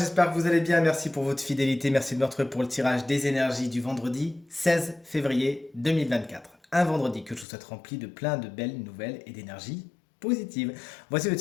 que vous allez bien. Merci pour votre fidélité, merci de me retrouver pour le tirage des énergies du vendredi 16 février 2024. Un vendredi que je vous souhaite rempli de plein de belles nouvelles et d'énergie positive. Voici le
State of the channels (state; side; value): drops out; right; at 7.5 s